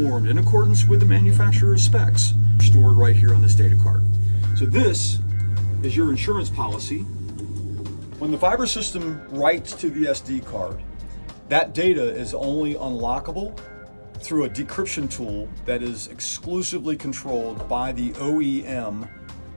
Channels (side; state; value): both; inverted; correlation -1.00